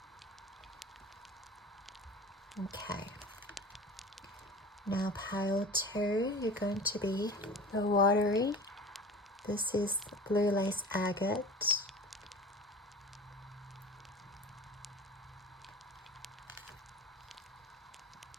Okay. Now pile 2, you're going to be the watery. This is blue lace agate.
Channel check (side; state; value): both; normal; correlation 0.38